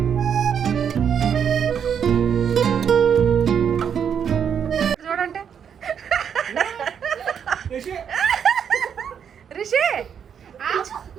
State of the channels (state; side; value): quieter; left; 7.8 dB